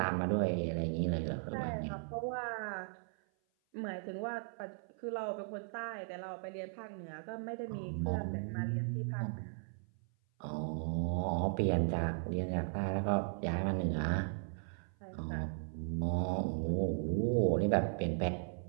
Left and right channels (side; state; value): left; silent; 53 dB below the other